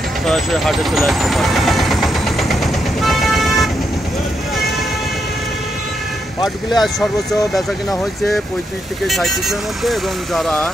সরাসরি হাটে চলে আসতে পারবেন। পাটগুলি আজ সর্বোচ্চ বেচা কেনা হয়েছে 35 থেকে 37-এর মধ্যে, এবং যারা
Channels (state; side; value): normal; both; correlation 0.81